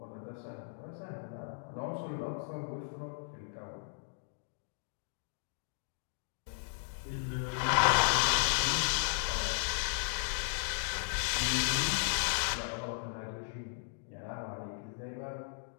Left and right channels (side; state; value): right; silent; digital silence